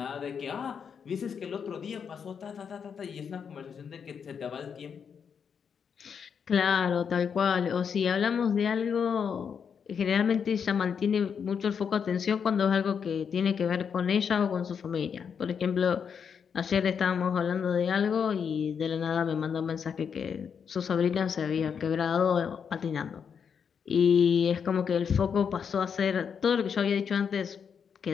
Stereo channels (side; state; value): right; quieter; 6.9 dB